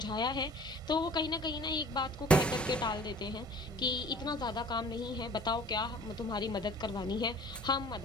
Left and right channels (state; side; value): normal; both; correlation 0.47